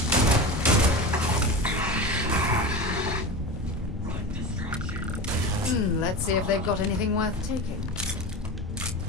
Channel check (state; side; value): normal; both; correlation 0.26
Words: Let's see if they've got anything worth taking.